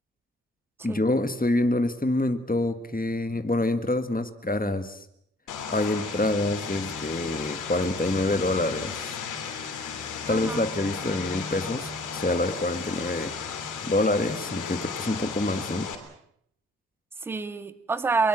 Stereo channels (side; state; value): both; normal; correlation 0.57